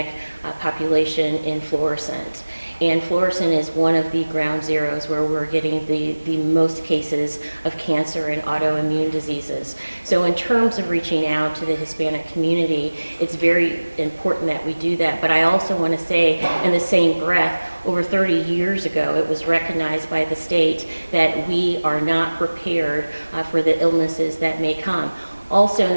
population in Florissant. And Florissant is one of the ground zeros where we're getting the most cases of cancer and autoimmune diseases. So in terms of reaching out to the Hispanic community, it's very important that we do that. But I also want to say, in the same breath, over 30 years ago, it was recognized by the state that we are not prepared for the illnesses that may come. Also in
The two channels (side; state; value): both; inverted; correlation -1.00